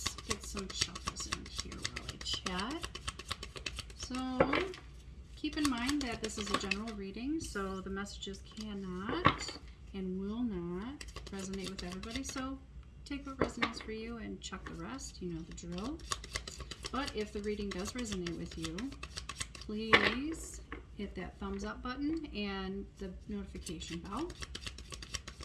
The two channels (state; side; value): identical; both; correlation 1.00